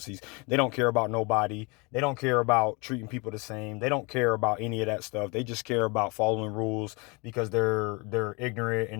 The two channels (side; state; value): right; quieter; 28.7 dB